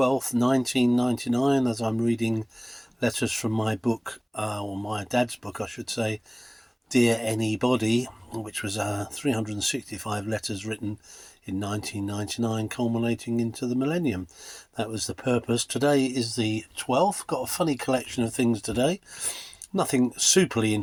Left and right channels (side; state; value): both; identical; correlation 1.00